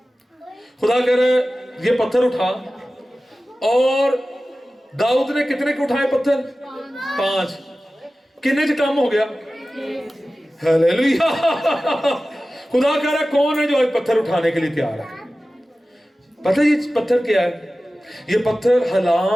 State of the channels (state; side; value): normal; both; correlation 0.95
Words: खुदा कह रहे ये पत्थर उठा, और दाऊद ने कितने के उठाए पत्थर? 5। कितने च काम हो गया? हालेलुया। खुदा कह रहा कौन है जो आज पत्थर उठाने के लिए तैयार है? पता है ये पत्थर क्या है? ये पत्थर